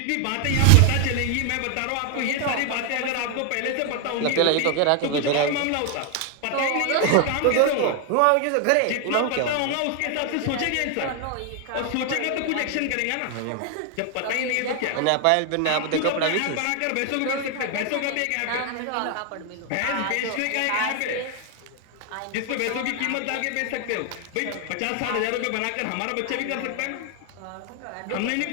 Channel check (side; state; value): both; different; correlation 0.00